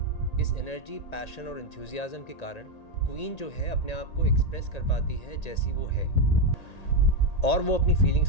इस एनर्जी, पैशन और एंथुसियाज्म के कारण क्वीन जो है अपने आप को एक्सप्रेस कर पाती है जैसी वो है, और वो अपनी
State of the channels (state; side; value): late; right; 1.8 ms